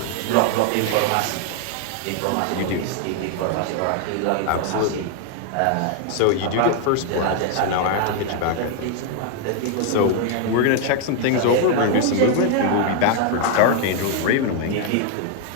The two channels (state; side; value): different; both; correlation 0.00